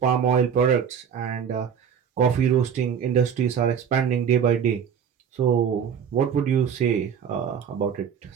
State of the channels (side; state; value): left; quieter; 7.7 dB